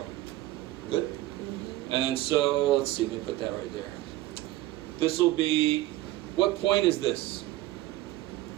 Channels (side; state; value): left; quieter; 16.2 dB